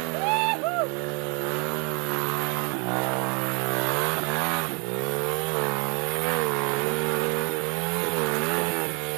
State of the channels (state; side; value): quieter; left; 34.0 dB